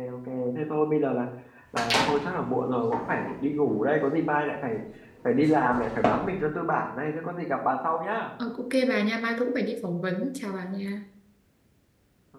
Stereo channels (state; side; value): identical; both; correlation 1.00